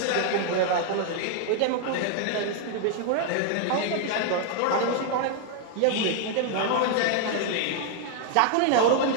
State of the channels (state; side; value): different; both; correlation 0.00